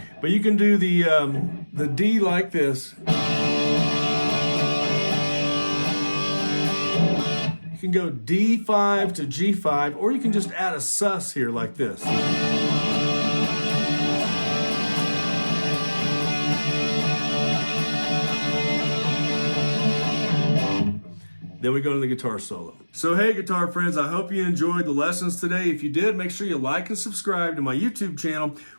But you can do the D like this. You can go D5 to G5, or you can just add a sus here like this. Then we go to the guitar solo. So hey, guitar friends, I hope you enjoyed the lessons today. If you did, make sure you like and subscribe to my YouTube channel.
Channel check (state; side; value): inverted; both; correlation -1.00